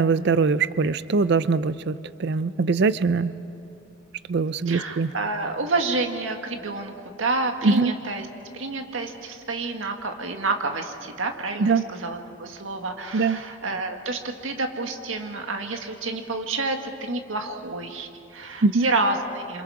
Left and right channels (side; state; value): left; quieter; 3.5 dB